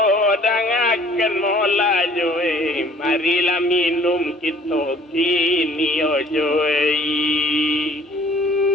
dangaken mola joe marilah minum kita kini ojoe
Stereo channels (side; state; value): both; normal; correlation 0.55